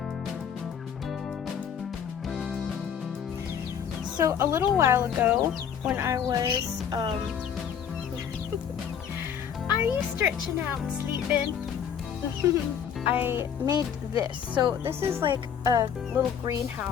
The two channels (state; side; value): quieter; right; 8.1 dB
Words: So a little while ago, when I was, are you stretching out and sleeping? I made this. So this is like a little